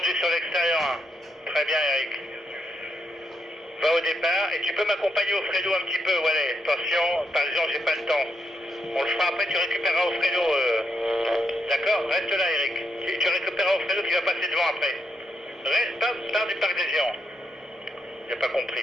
sur l'extérieur 1. Très bien Eric. Va au départ et tu peux m'accompagner au Fredo un petit peu, voilà. Attention, par exemple, j'ai pas le temps. On le fera après, tu récupéreras au Fredo. D'accord? Reste là Eric. Tu récupéreras au Fredo qui va passer devant après. Reste, pars du parc des géants. J'ai pas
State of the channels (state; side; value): normal; both; correlation 0.79